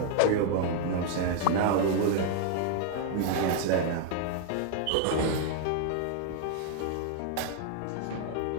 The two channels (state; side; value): different; both; correlation 0.00